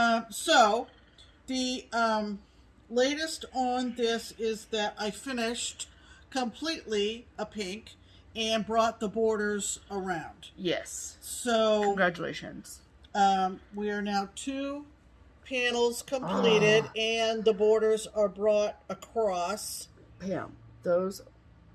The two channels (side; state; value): both; identical; correlation 1.00